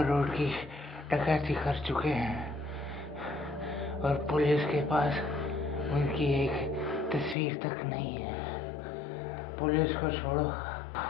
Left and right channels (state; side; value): drops out; right; at 7.4 s